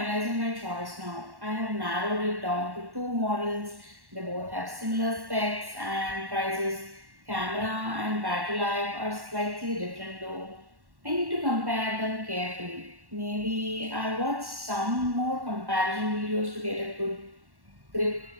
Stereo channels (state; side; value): late; left; 1.1 ms